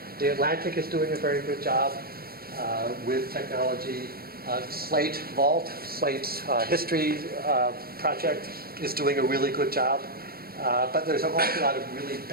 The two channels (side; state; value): left; late; 0.44 ms